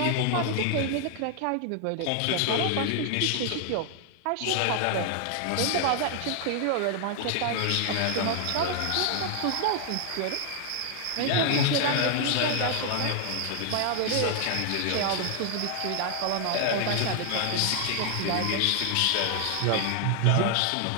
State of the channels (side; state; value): both; different; correlation 0.00